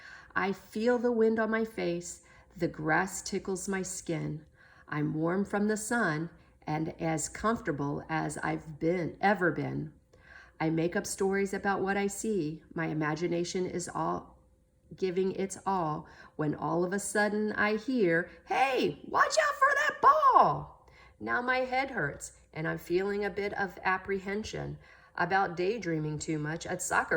I feel the wind on my face. The grass tickles my skin. I'm warm from the sun and as comfortable as I've ever been. I make up stories about what I see. My imagination is all giving its all when all of a sudden I hear, "Hey, watch out for that ball!" Now my head hurts and I'm feeling a bit of apprehension about daydreaming too much at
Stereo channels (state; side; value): identical; both; correlation 1.00